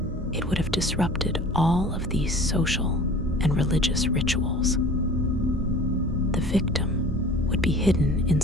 it would have disrupted all of these social and religious rituals. The victim would be hidden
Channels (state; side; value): normal; both; correlation 0.44